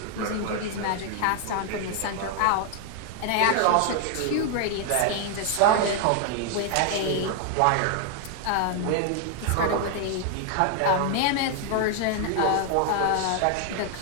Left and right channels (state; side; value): different; both; correlation 0.00